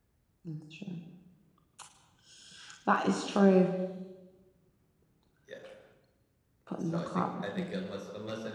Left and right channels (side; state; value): both; identical; correlation 1.00